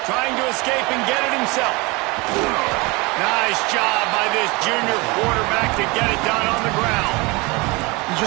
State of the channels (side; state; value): left; quieter; 25.0 dB